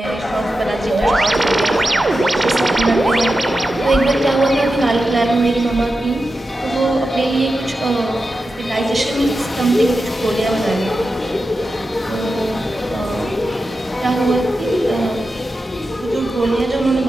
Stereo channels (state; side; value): normal; both; correlation 0.91